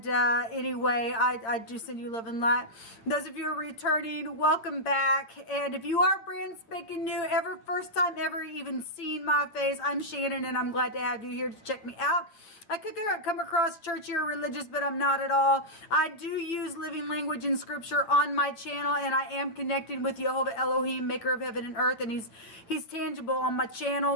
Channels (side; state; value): right; late; 9.3 ms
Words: anyway, I do send you love and light. Those of you who are returning, welcome back. And if you are brand spanking new, first time ever even seeing my face, I'm Shannon, and I'm glad to have you here to check me out. I could come across churchy or religious, but I'm not at all. I do use living language and scripture on my channel, and I am connected with Jehovah Elohim, maker of heaven and earth, and he's tangible on my